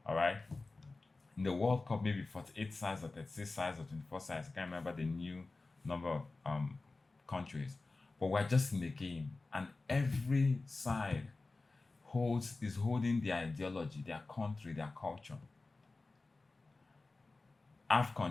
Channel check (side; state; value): right; quieter; 3.5 dB